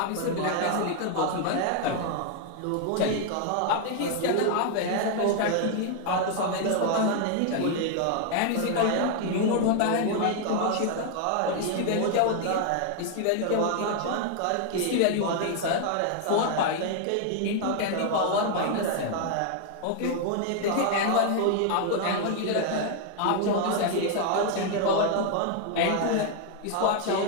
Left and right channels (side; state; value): both; different; correlation 0.00